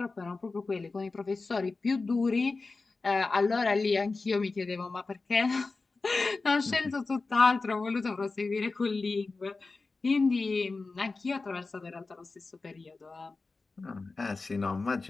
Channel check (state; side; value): quieter; right; 3.8 dB